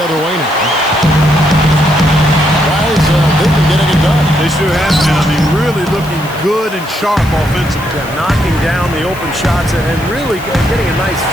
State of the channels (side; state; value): left; noise; hiss, 19 dB below the sound